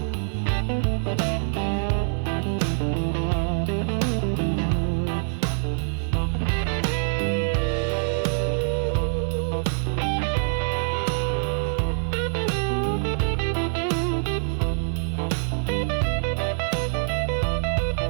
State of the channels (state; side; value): silent; left; 62 dB below the other